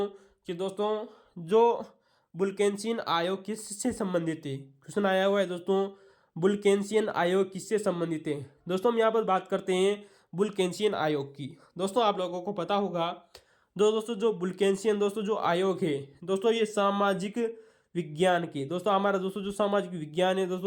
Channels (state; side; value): identical; both; correlation 1.00